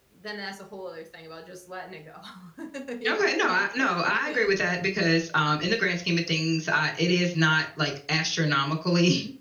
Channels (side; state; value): both; identical; correlation 1.00